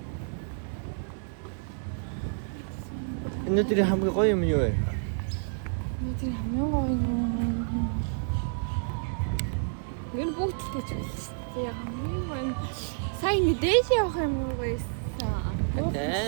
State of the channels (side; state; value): left; silent; digital silence